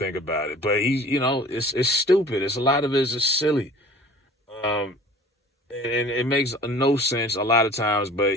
about it. But it's stupid. A lot of it is just silly. And it makes no sense a lot of times, but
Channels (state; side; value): normal; both; correlation 0.46